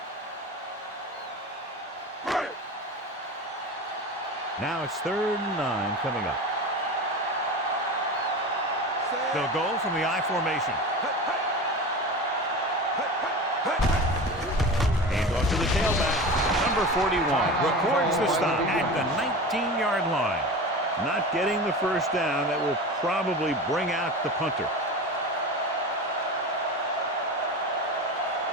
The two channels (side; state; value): both; normal; correlation 0.30